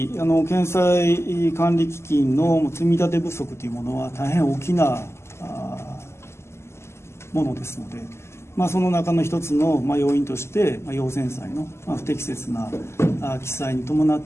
県債管理基金の積み立て不足というものは大変大きなものですので、その中の一つの要因として、要遷債の不適切な記載に伴っ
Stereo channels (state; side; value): late; right; 0.13 ms